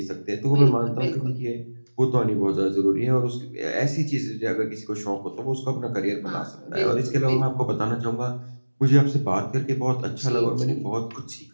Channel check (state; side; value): inverted; both; correlation -1.00